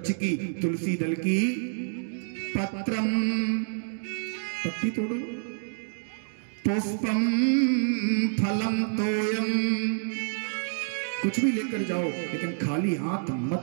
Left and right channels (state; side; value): silent; left; digital silence